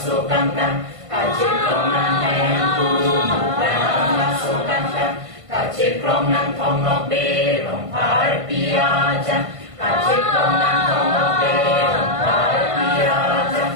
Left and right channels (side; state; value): left; late; 1.5 ms